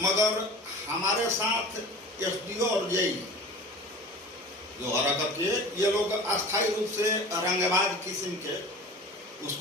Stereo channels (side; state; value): both; normal; correlation 0.38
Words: मगर हमारे साथ एसडीओ और जेई जो हरकत किए, ये लोग अस्थायी रूप से रंगबाज किस्म के